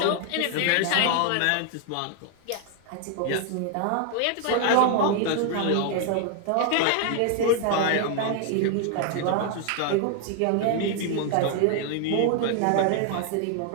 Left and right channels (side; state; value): both; different; correlation 0.00